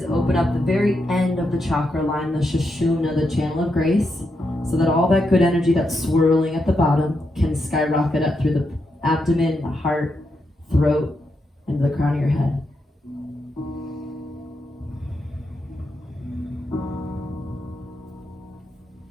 open up the very end of the chakra line, the Sushumna, the channel of grace, so that all that good energy that's swirling at the bottom can skyrocket up through the abdomen, the heart, throat, and the crown of your head.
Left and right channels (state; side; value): normal; both; correlation 0.83